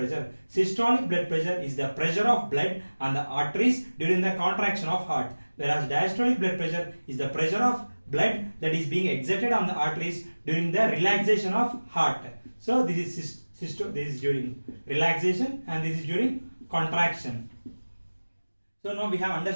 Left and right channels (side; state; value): both; inverted; correlation -1.00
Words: Systolic blood pressure is the pressure of blood on the arteries during the contraction of heart, whereas diastolic blood pressure is the pressure of blood that is being exerted on the arteries during the relaxation of heart. So this is during relaxation and this is during contraction. So now we have